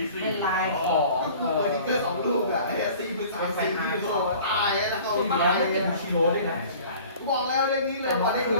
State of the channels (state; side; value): inverted; both; correlation -0.46